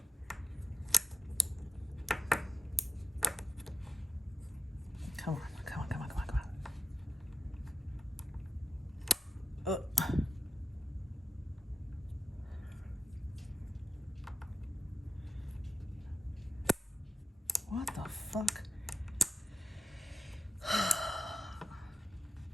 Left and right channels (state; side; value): normal; both; correlation 0.80